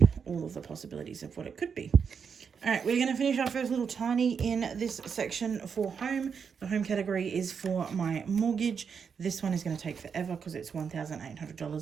all of the possibilities of what it could be. All right, we're going to finish our first little tiny in this section for home. The home category is for my mortgage. This one is going to take forever because it's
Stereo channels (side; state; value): left; quieter; 6.4 dB